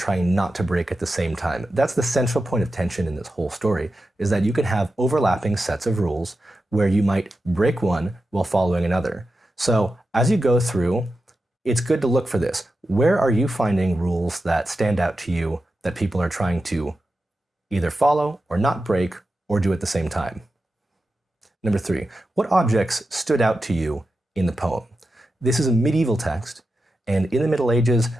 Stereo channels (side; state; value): both; normal; correlation 0.91